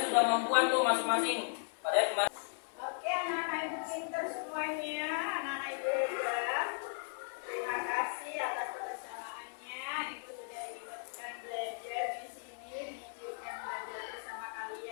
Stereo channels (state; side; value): silent; right; digital silence